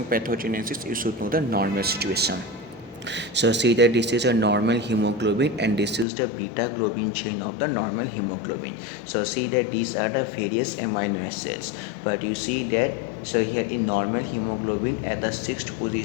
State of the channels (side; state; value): right; drops out; at 6.1 s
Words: pathogenesis, you should know the normal situation. So see that this is a normal hemoglobin and this is the beta globin chain of the normal hemoglobin. So see that these are the various amino acids, but you see that so here in normal hemoglobin at the sixth